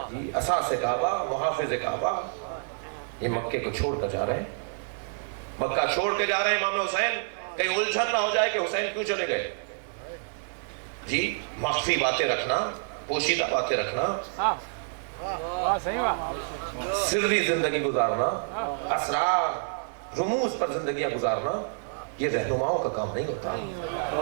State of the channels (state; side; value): silent; left; 59 dB below the other